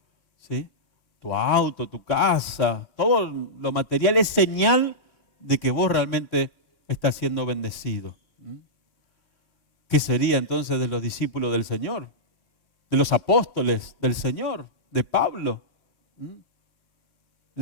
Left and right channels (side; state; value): right; late; 3.1 ms